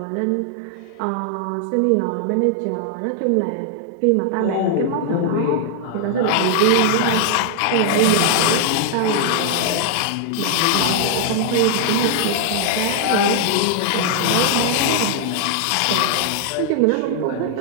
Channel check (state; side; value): different; both; correlation 0.00